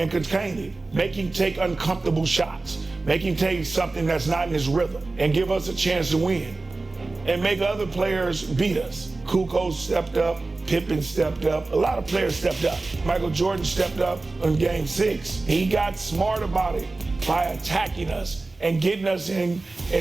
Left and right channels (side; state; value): left; quieter; 3.3 dB